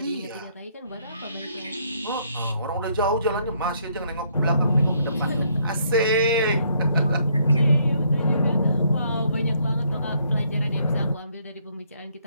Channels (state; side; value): inverted; both; correlation -0.69